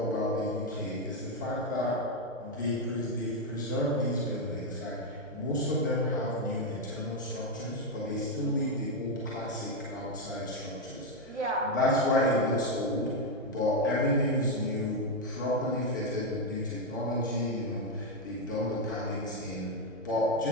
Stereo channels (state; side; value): normal; both; correlation 0.04